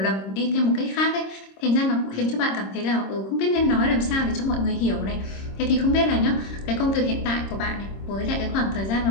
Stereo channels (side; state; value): right; late; 26 ms